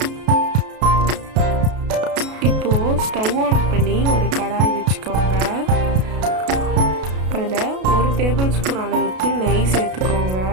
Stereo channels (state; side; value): late; left; 33 ms